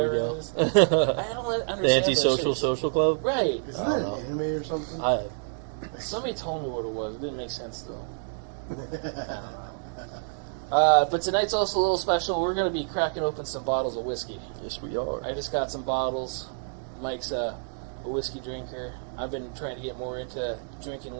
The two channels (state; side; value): silent; left; digital silence